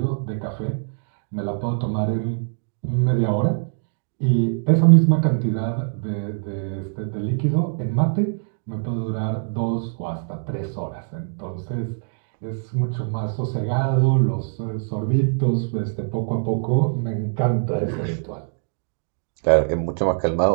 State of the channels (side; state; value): left; silent; digital silence